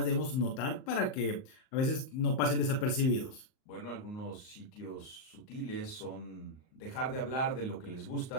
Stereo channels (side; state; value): right; late; 38 ms